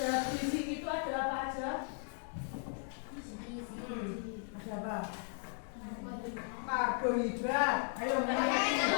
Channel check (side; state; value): right; silent; 53 dB below the other